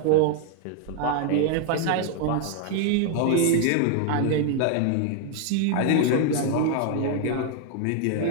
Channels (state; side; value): different; both; correlation 0.00